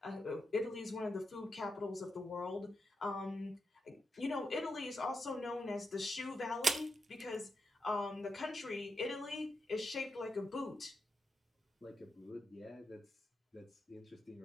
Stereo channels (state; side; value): normal; both; correlation 0.85